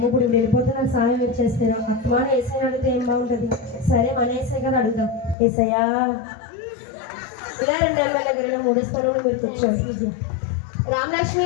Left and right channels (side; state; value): right; drops out; at 5.4 s